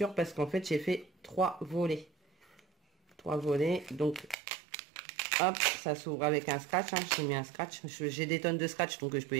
parce qu'en fait, j'ai fait 3 volets. 3 volets. Donc, hop, ça s'ouvre avec un scratch. Hein. J'ai mis un scratch. J'ai des tonnes de scratch, donc je peux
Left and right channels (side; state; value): left; drops out; at 4.4 s